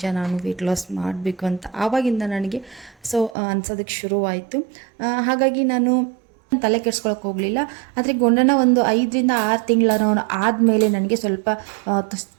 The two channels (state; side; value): drops out; left; at 3.4 s